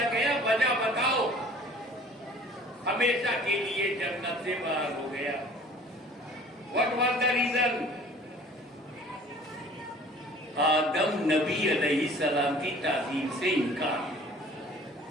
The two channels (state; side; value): normal; both; correlation 0.49